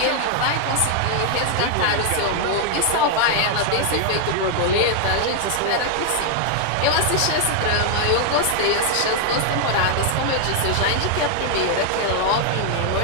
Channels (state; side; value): different; both; correlation 0.00